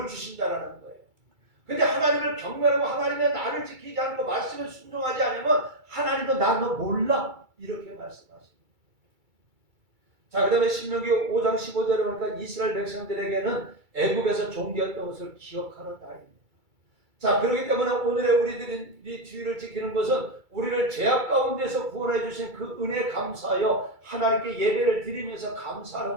주신다라는 거예요. 근데 하나님을 경외하고 하나님의 나를 지키지 않고 말씀을 순종하지 않으면 하나님도 나 너 몰라 이렇게 말씀하십니다. 자, 그 다음에 신명기 5장 15절에 보니까 이스라엘 백성들에게는 애굽에서 종되었던 것을 기억하는 날입니다. 자, 그렇기 때문에 오늘의 우리들이 주일을 지키는 것은 우리를 죄악 가운데서 구원해 주신 그 은혜에 감사하여 하나님께 예배를 드리면서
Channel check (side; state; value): left; late; 2.3 ms